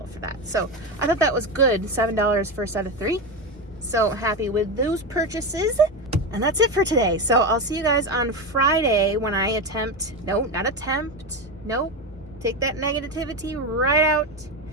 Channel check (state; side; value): normal; both; correlation 0.16